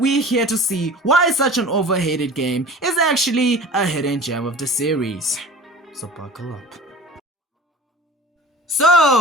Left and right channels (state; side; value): normal; both; correlation 0.41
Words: we're here to see why such an overhated game is actually a hidden gem of the series. So buckle up.